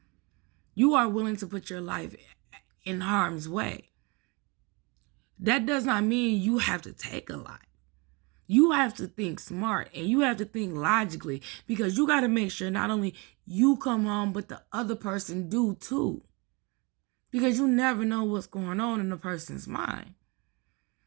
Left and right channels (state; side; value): quieter; left; 28.8 dB